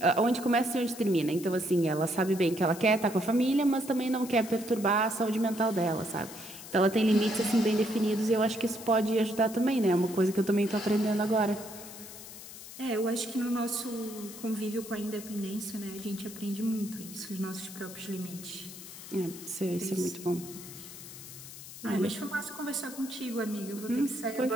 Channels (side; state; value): left; noise; hiss, 14 dB below the sound